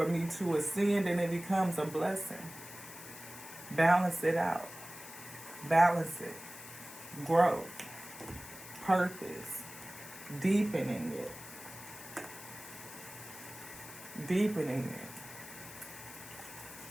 me to ascend, and it becomes a blessing. Balance it out. Balance it. Growth. Purpose. Deepening it. Deepening it.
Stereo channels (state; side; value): noise; left; hiss, 14 dB below the sound